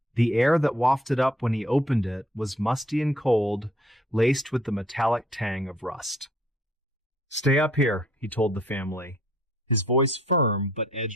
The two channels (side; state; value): both; normal; correlation 0.62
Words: The air that wafted up when he opened it was musty and cold, laced with the metallic tang of rust. "Stay up here," he told the family, his voice firm but